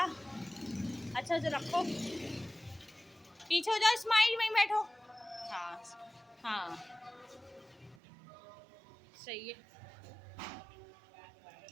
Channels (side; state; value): left; drops out; at 8.0 s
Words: अच्छा जो रखो, पीछे हो जाओ, स्माइल में बैठो। हाँ हाँ सही है।